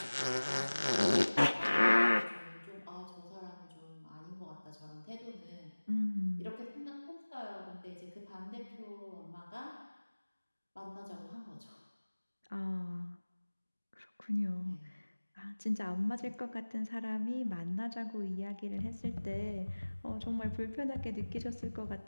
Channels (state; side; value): inverted; both; correlation -1.00